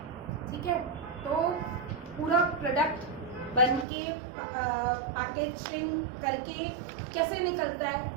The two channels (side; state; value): left; drops out; at 3.9 s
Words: ठीक है। तो पूरा प्रोडक्ट बन के पैकेजिंग करके कैसे निकलता है